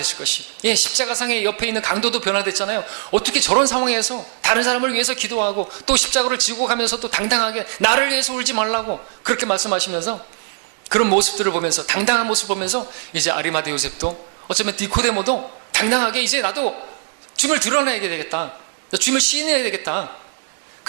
것이. 십자가상의 옆에 있는 강도도 변화됐잖아요. 어떻게 저런 상황에서 다른 사람을 위해서 기도하고 또 십자가를 지고 가면서 또 당당하게 나를 위해서 울지 말라고 그렇게 말씀하시면서, 그런 모습들을 보면서, 당당한 모습을 보면서 이제 아리마대 요셉도, 어쩌면 니코데모도 당당하게 이제 나도 주님을 드러내야 되겠다, 주님을 시인해야 되겠다,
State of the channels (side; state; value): left; silent; digital silence